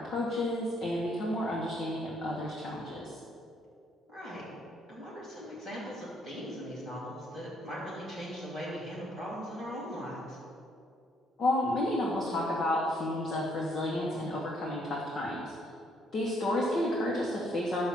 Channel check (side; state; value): both; normal; correlation 0.69